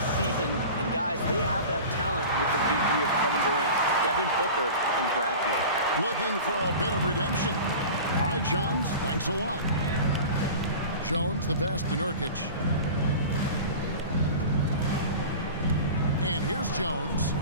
season, and guys, they have that talent with the big three of Kevin Durant, Devin Booker, and Brad Beal. Looking for a bit of redemption. All right, Shams, thanks a lot. Jones, the pass to Nurkic. And here's Jones.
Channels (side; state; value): both; inverted; correlation -0.35